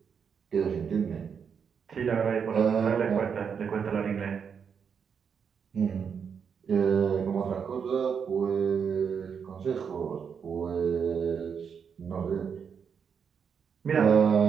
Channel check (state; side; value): quieter; left; 6.8 dB